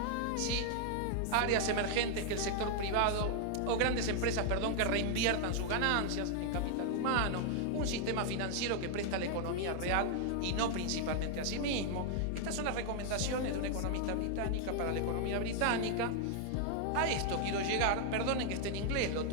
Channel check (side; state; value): both; different; correlation 0.00